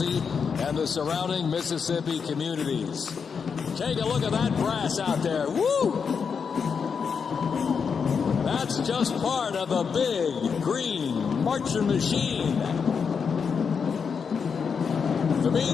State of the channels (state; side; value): quieter; right; 6.1 dB